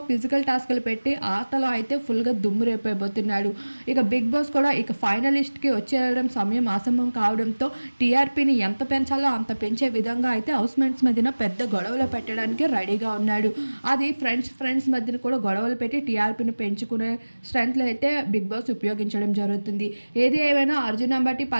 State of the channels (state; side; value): inverted; both; correlation -1.00